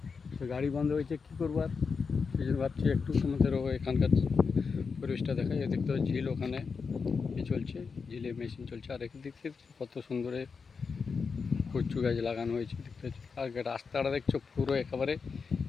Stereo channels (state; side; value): quieter; right; 5.3 dB